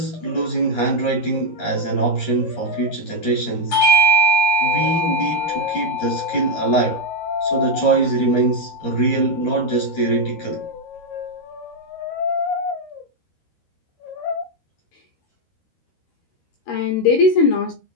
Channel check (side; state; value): right; late; 13 ms